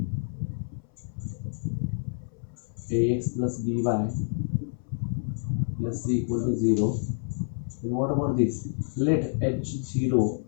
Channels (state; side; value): silent; right; 59 dB below the other